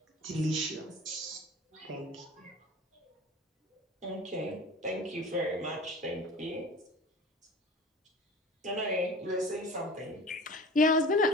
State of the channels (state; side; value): normal; both; correlation 0.39